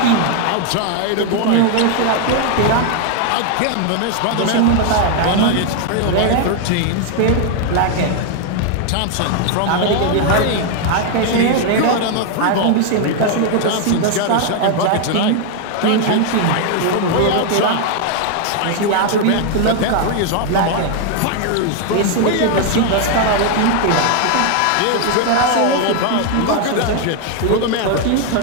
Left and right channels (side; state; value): both; different; correlation 0.00